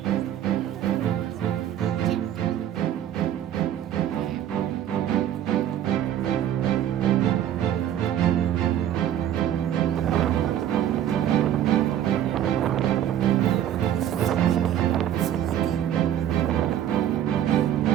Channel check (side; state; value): left; quieter; 10.9 dB